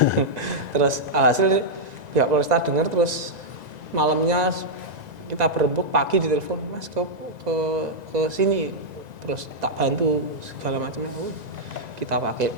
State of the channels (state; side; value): late; left; 1.9 ms